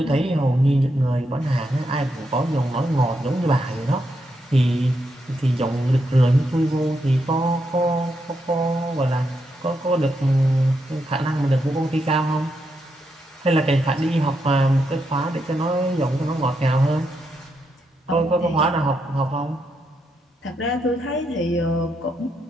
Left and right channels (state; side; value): normal; both; correlation 0.82